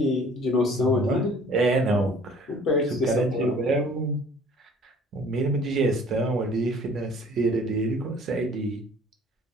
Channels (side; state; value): both; normal; correlation 0.52